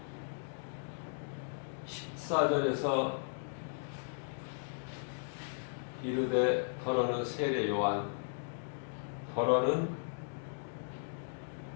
14절에서 이르되 더러는 세례 요한, 더러는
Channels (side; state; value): right; silent; digital silence